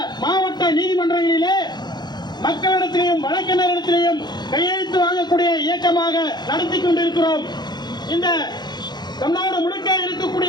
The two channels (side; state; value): right; late; 0.21 ms